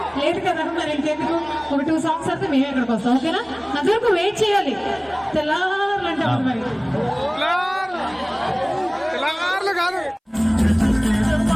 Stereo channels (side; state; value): both; identical; correlation 1.00